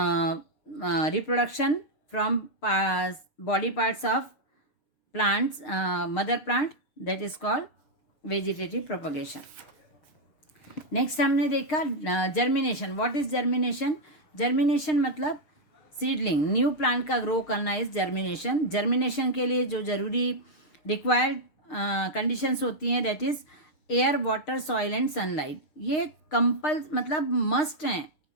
reproduction from body parts of plants, mother plant, that is called vegetative propagation. Next हमने देखा germination. What is germination? Germination मतलब सीडलिंग, न्यू प्लांट का ग्रो करना इज जर्मिनेशन। जर्मिनेशन के लिए जो जरूरी रिक्वायर्ड कंडीशंस होती हैं that is air, water, soil and sunlight. ये मतलब मस्ट हैं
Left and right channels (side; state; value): right; late; 6.5 ms